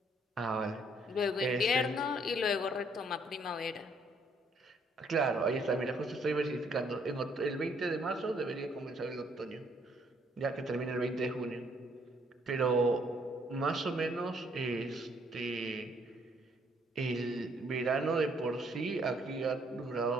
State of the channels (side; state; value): both; normal; correlation 0.67